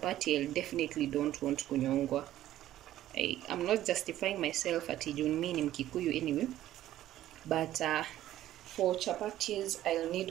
I definitely don't want kunyongwa. I'm not justifying myself at mimi ni Mkikuyu anyway. But for chapatis, I'll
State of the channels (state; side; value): quieter; left; 13.4 dB